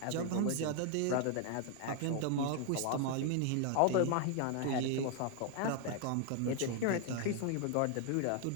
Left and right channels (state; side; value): different; both; correlation 0.00